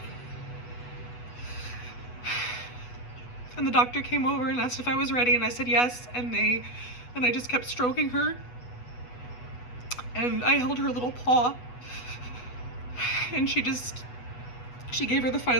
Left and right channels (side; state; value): right; late; 8.2 ms